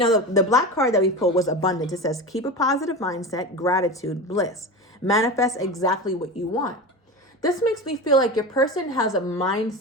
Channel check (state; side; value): normal; both; correlation 0.26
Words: the black card that we pulled was abundance. It says, keep a positive mindset, gratitude, bliss. Manifest exactly what you want. This makes me feel like your person has a